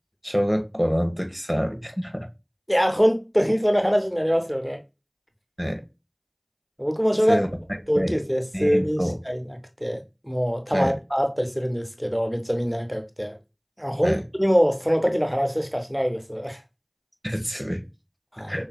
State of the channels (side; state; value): both; identical; correlation 1.00